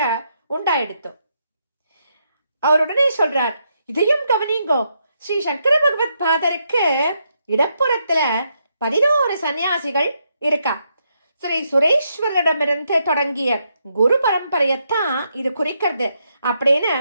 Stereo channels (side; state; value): both; inverted; correlation -0.79